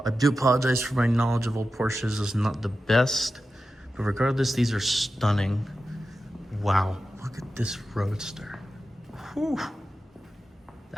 do apologize for my knowledge of old Porsches. It's not the best, but regardless, these are stunning. Wow, look at this Roadster. Whew.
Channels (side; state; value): both; normal; correlation 0.92